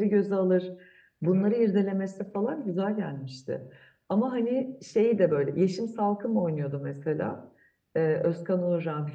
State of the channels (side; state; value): both; identical; correlation 1.00